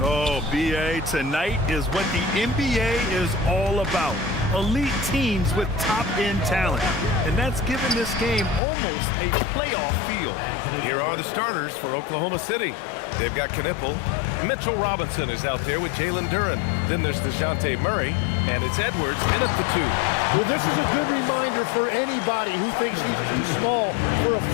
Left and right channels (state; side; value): drops out; right; at 8.6 s